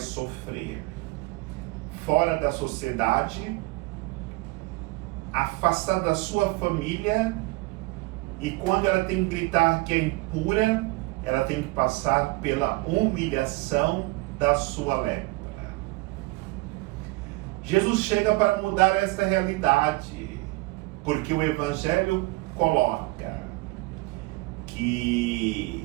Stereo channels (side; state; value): left; quieter; 22.7 dB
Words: fora da sociedade, afastada da sua família, e quando ela tem que gritar que é impura, ela tem que passar pela humilhação da sua lepra. Jesus chega para mudar essa realidade, porque o Evangelho coloca